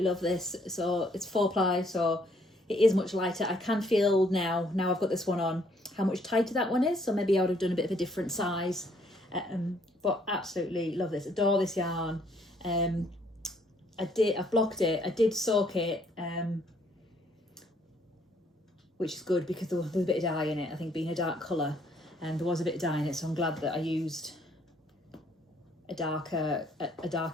love this. So it's 4-ply, so it is much lighter. I can feel now I've got this one on, how much tighter that one is. So maybe I would have done a bit of a different size, but absolutely love this. Adore this yarn. I've blocked it. I did soak it, which is good because there was a bit of dye in it. I think being a dark colour, and there was a bit of dye in it, so I'm glad that I used a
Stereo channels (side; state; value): both; normal; correlation 0.66